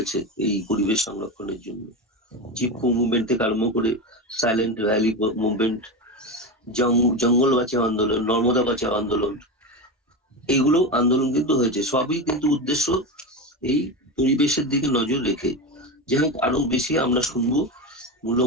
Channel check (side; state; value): both; normal; correlation 0.20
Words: এই পরিবেশ সংরক্ষণের জন্য। চিপকো মুভমেন্ট থেকে আরম্ভ করে সাইলেন্ট ভ্যালি মুভমেন্ট, জঙ্গল বাঁচাও আন্দোলন, নর্মদা বাঁচাও আন্দোলন, এইগুলো আন্দোলন কিন্তু হয়েছে। সবই কিন্তু উদ্দেশ্য এই পরিবেশের দিকে নজর রেখে। যাই হোক, আরো বেশি আমরা শুনবো